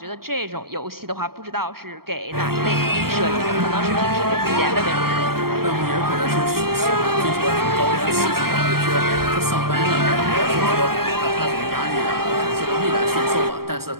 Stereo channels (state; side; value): late; left; 0.94 ms